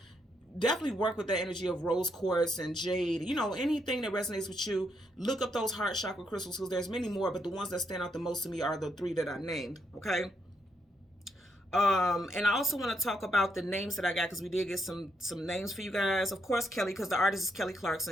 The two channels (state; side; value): normal; both; correlation 0.77